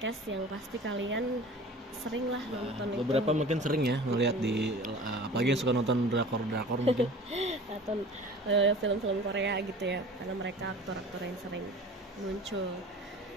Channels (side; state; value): both; normal; correlation 0.41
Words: yang pasti kalian sering lah nonton. Beberapa mungkin sering ya ngelihat di apalagi yang suka nonton drakor mungkin atau film-film Korea gitu ya, karena mereka aktor-aktor yang sering muncul.